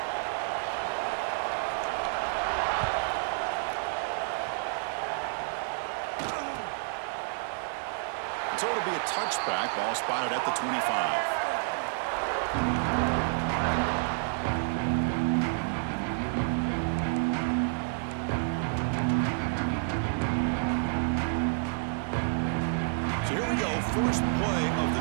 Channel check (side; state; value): left; silent; 58 dB below the other